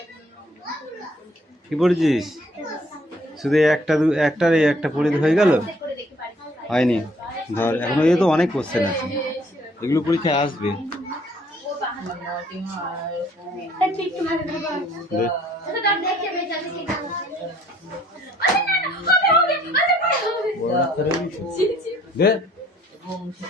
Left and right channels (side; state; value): both; normal; correlation 0.62